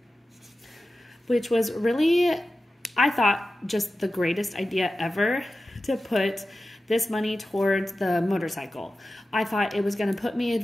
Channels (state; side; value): normal; both; correlation 0.94